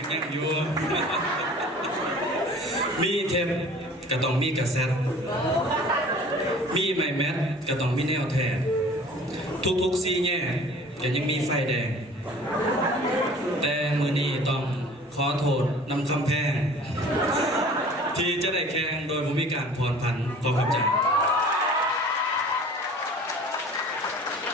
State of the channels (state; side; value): normal; both; correlation 0.46